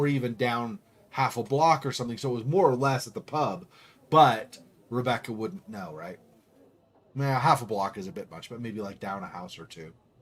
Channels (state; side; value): identical; both; correlation 1.00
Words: even down half a block or something, so it was more or less at the pub, but Rebecca wouldn't know, right? Nah, half a block is a bit much, but maybe like down a house or two.